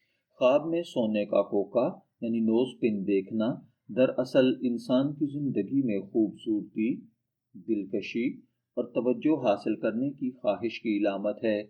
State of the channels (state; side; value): identical; both; correlation 1.00